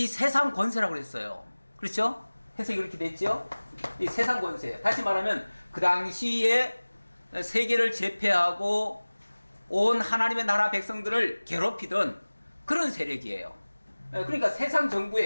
세상 권세라고 그랬어요. 그렇죠? 해석이 그렇게 됐죠? 이 세상 권세. 다시 말하면 그 당시에 세계를 제패하고 온 하나님의 나라 백성들을 괴롭히던 그런 세력이에요. 그러니까 세상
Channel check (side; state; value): both; inverted; correlation -1.00